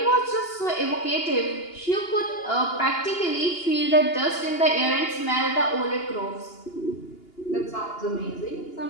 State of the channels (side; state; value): right; late; 2.8 ms